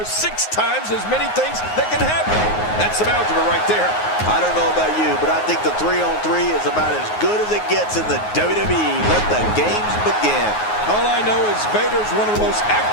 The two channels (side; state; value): right; late; 9.5 ms